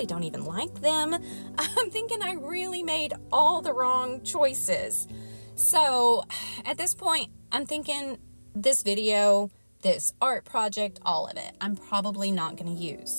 don't even like them. I'm thinking I really made all the wrong choices. So at this point, I'm thinking this video, this art project, all of it, I'm probably not going to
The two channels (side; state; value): both; inverted; correlation -1.00